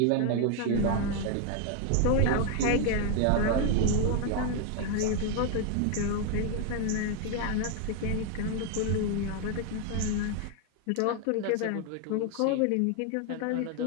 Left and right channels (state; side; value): different; both; correlation 0.01